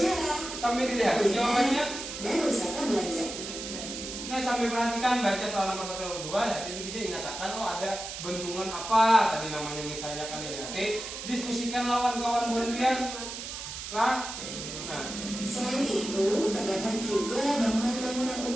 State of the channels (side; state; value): right; noise; hiss, 8 dB below the sound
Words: sambil dilihat jawabannya. dan wisata belanja. Nah, sambil perhatikan baca soal nomor 1 dan 2 ya, itu bisa dinyatakan ada bendungan apa tadi namanya misalnya kan ya. Oke, diskusikan lawan kawan kalian. Nah, Selain itu, terdapat juga bangunan-bangunan